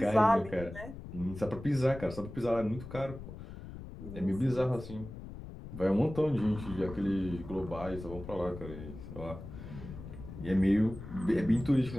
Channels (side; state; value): left; noise; rumble, 12 dB below the sound